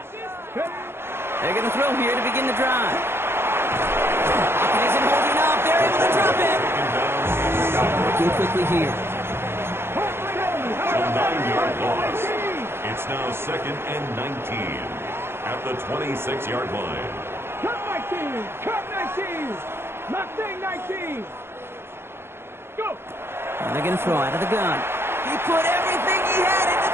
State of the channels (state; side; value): late; left; 0.11 ms